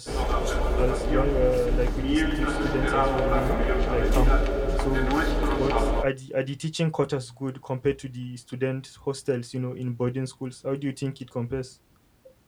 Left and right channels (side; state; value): both; identical; correlation 1.00